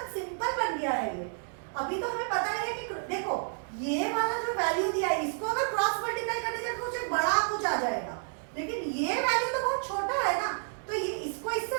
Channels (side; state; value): left; silent; 57 dB below the other